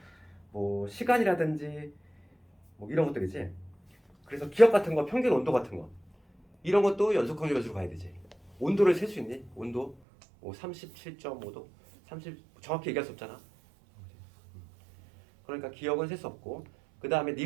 뭐 시간이라든지 뭐 이런 것들이지. 그래서 기억 같은 거, 평균 온도 같은 거, 이런 것도 연속 확률 변수로 가야 되지. 온도를 셀 수 있니? 온도 뭐 37.5도, 30 정확히 얘기할 수 없잖아. 그러니까 기억은 셀 수 없고, 그 다음에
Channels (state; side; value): drops out; left; at 10.0 s